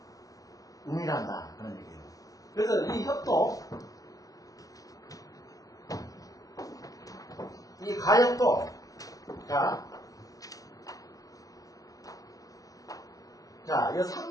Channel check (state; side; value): late; right; 0.17 ms